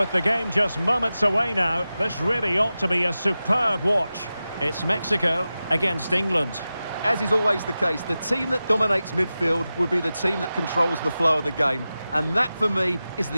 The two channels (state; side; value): inverted; both; correlation -0.94